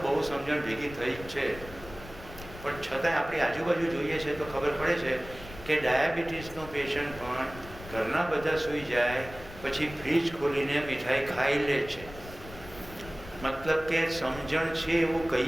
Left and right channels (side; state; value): left; noise; rumble, 15 dB below the sound